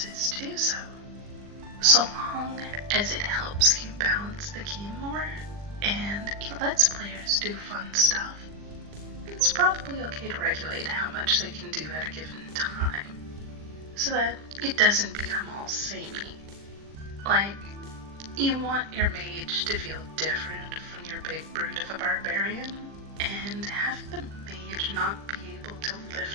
to do so. So long as it helps you balance the game more and it lets players do fun stuff, it's it's probably okay to regulate how much they can do at a given time, so that it doesn't become all samey. Like, you want your mage to feel different from your big brute of a barbarian, and having the mage not be able to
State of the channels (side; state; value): left; late; 40 ms